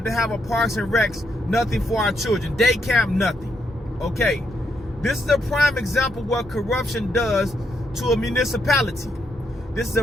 to have a Parks and Recs, nothing for our children. Day camp, nothing. Okay. This is a prime example of what corruption does to a municipality. This is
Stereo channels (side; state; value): both; normal; correlation 0.78